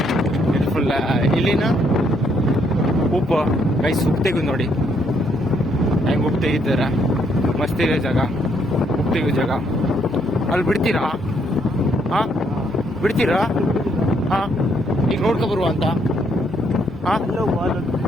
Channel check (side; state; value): right; noise; hum, 22 dB below the sound